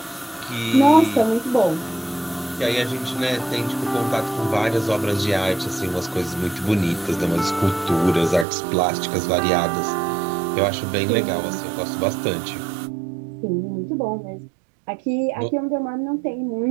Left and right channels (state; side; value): drops out; left; at 8.5 s